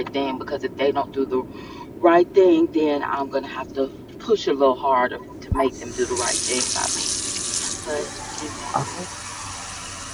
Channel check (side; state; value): both; identical; correlation 1.00